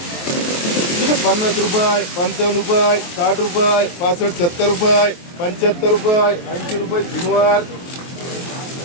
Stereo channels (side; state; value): right; late; 23 ms